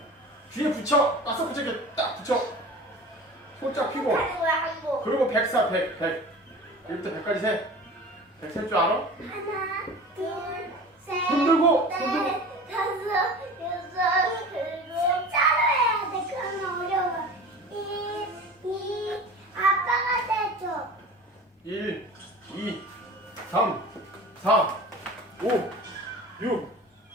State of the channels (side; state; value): both; normal; correlation 0.37